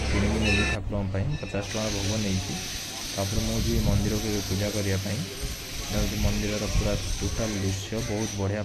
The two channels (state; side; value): identical; both; correlation 1.00